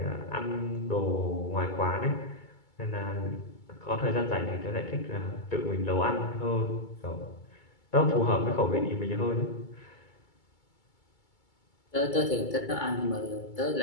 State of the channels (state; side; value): late; right; 2.2 ms